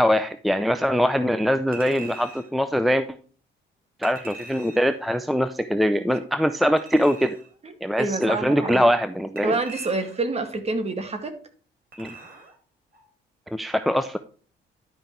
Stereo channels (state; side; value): normal; both; correlation 0.88